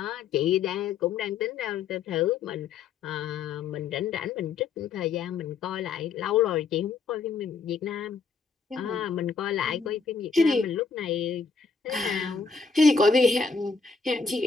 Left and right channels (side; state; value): right; quieter; 5.0 dB